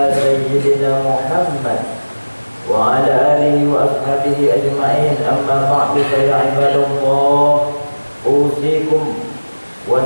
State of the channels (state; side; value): inverted; both; correlation -1.00